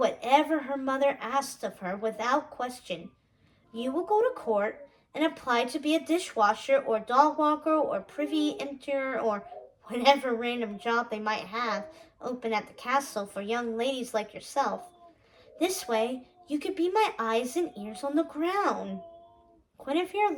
her mother asked of her without question. You will go to court and apply to be a dishwasher or dog walker or privy emptier or whatever random job they might have open at the castle for young ladies like yourself. This way, you could be my eyes and ears on the ground. Guinevere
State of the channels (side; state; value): both; identical; correlation 1.00